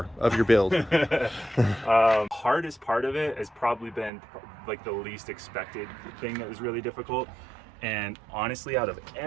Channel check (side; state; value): left; drops out; at 4.1 s